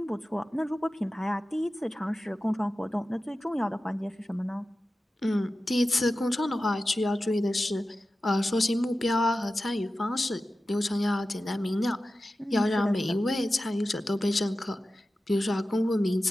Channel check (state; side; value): normal; both; correlation 0.94